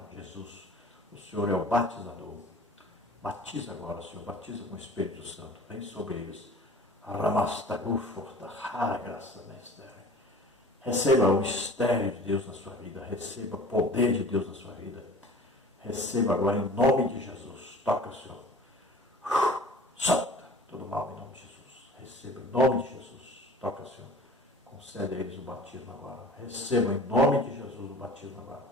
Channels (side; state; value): both; normal; correlation 0.43